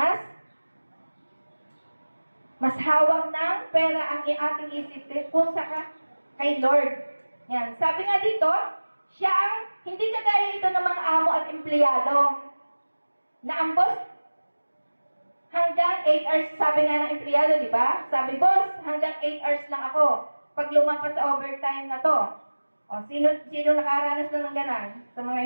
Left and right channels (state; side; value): inverted; both; correlation -1.00